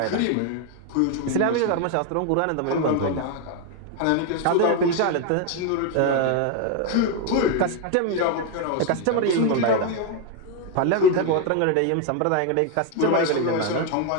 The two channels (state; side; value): different; both; correlation 0.01